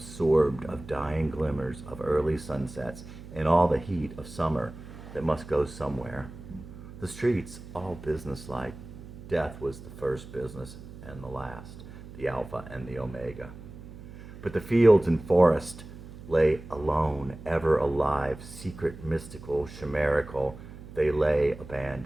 of dying glimmers of early sunsets and all the heat of summer that must go somewhere. The streets, all businesslike. Death was the first business and the last, the Alpha and the Omega. But the fields and forest lay alone, ever alive, secret, mystical, chimerical. They lay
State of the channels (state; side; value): noise; right; hum, 15 dB below the sound